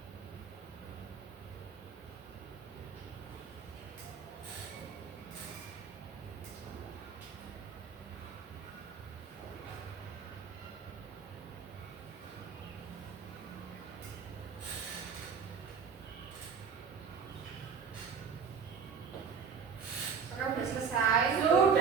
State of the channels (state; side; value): quieter; left; 6.2 dB